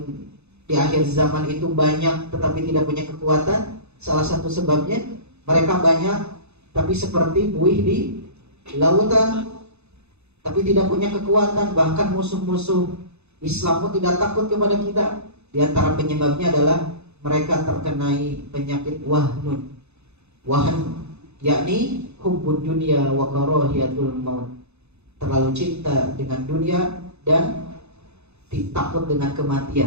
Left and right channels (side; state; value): left; late; 0.81 ms